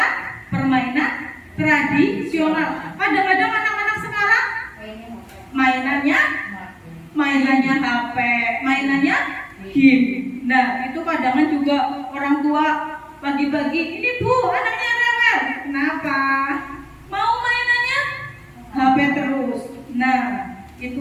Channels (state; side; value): identical; both; correlation 1.00